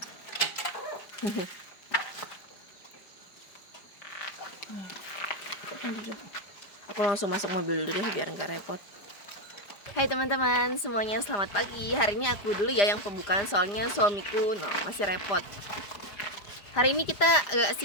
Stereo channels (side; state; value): right; late; 5.0 ms